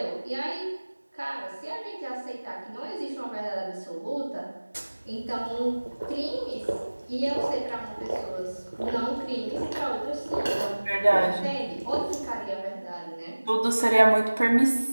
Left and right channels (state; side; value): inverted; both; correlation -1.00